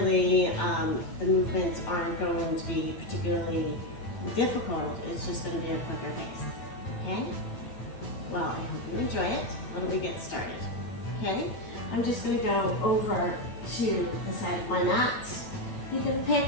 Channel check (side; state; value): right; late; 9.2 ms